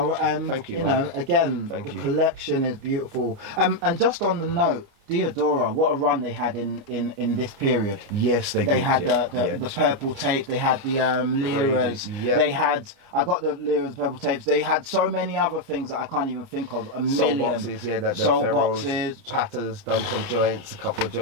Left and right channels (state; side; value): late; left; 29 ms